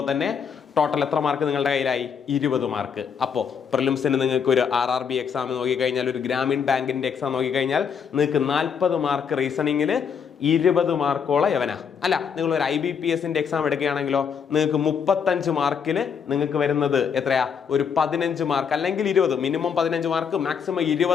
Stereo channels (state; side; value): quieter; right; 6.9 dB